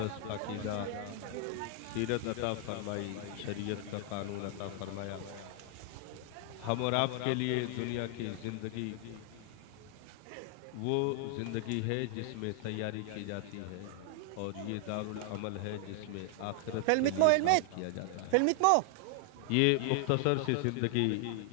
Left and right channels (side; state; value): both; different; correlation 0.00